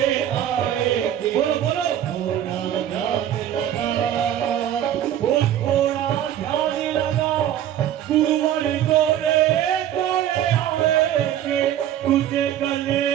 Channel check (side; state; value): left; quieter; 11.1 dB